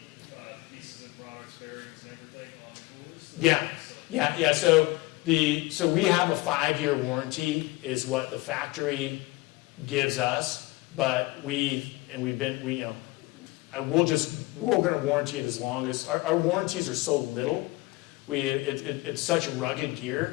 pieces and products, bearings, and everything on the coolers? Yeah. So we have a 5-year warranty is what the factory gives us, but we're going to warranty it as long as our warranties are so little. It's such rugged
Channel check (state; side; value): quieter; right; 21.3 dB